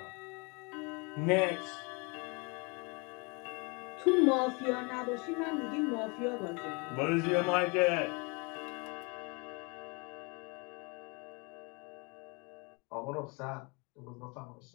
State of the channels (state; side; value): quieter; right; 30.5 dB